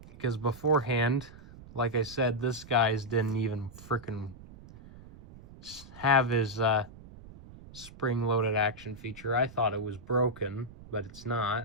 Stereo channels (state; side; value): noise; right; rumble, 18 dB below the sound